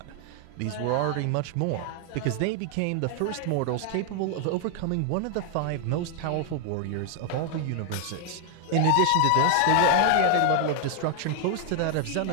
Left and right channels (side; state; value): both; different; correlation 0.00